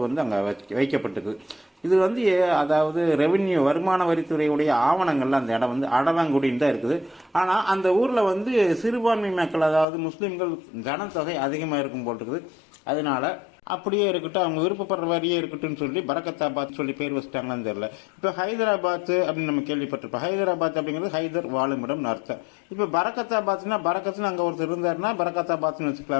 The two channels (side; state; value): right; drops out; at 9.9 s